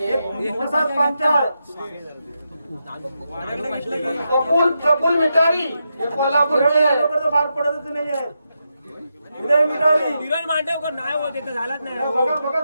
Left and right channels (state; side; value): inverted; both; correlation -0.86